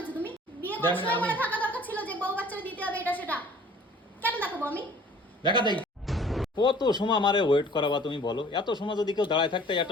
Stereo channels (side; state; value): both; normal; correlation 0.51